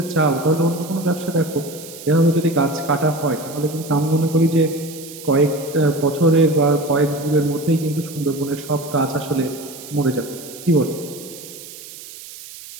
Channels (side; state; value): right; noise; hiss, 15 dB below the sound